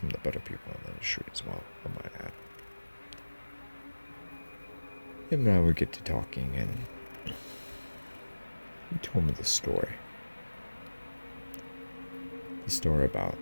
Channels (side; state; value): both; inverted; correlation -1.00